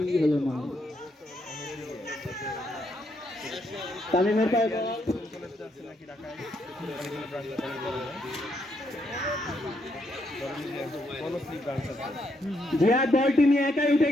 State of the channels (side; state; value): both; normal; correlation 0.76